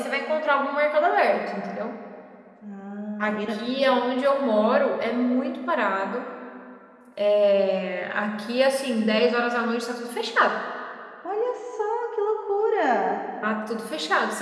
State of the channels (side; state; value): both; identical; correlation 1.00